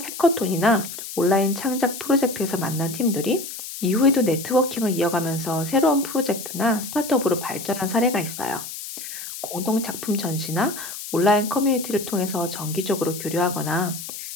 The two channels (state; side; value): noise; left; hiss, 9 dB below the sound